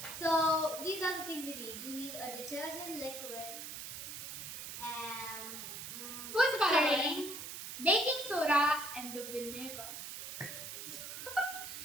So these are the things you need. You need a detergent liquid and Food coloring, baking soda, and the vinegar.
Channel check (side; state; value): right; noise; hiss, 8 dB below the sound